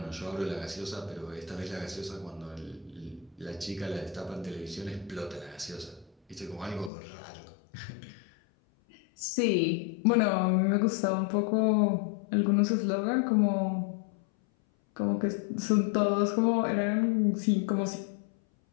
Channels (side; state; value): right; drops out; at 6.9 s